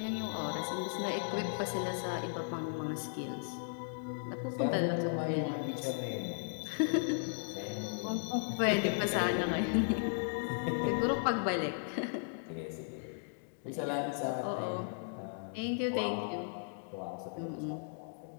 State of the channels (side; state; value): right; silent; digital silence